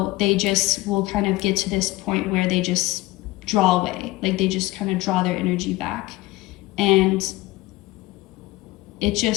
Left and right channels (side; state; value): right; quieter; 19.4 dB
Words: they just will kind of get to this point where they just draw away, like they just kind of draw their energy back. And it